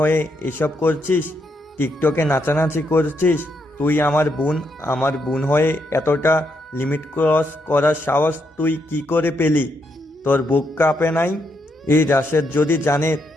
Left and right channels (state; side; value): normal; both; correlation 0.79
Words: এসব করছিস, টিকটকে নাচানাচি করছিস। তুই আমার বোন হয়ে এতটা লিমিট ক্রস করার সাহস তুই কি করে পেলি? তোর বুক কাঁপে নাই? এই রাশেদ যদি জানে